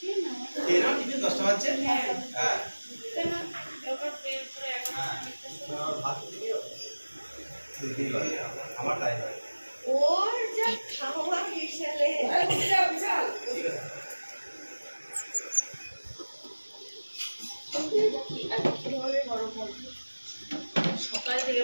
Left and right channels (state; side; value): inverted; both; correlation -1.00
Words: ওর যা খাওয়া বিশালে সকাল থেকে